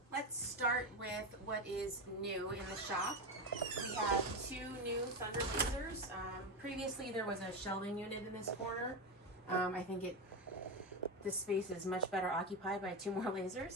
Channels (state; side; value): normal; both; correlation 0.15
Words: Let's start with what is new in the shop. We have 2 new Thunder lasers. Previously there was a shelving unit in this corner. I think this space is much better occupied by 2 more